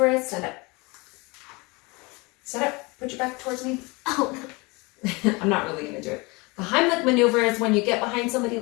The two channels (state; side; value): quieter; right; 26.1 dB